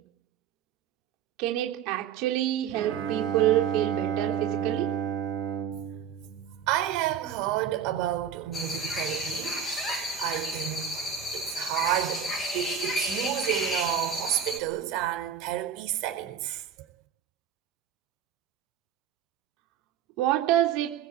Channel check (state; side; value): quieter; left; 8.2 dB